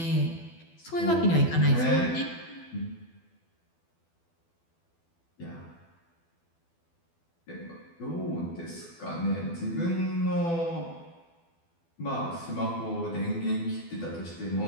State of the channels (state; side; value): late; right; 12 ms